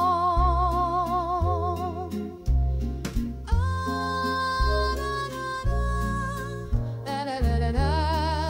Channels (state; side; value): identical; both; correlation 1.00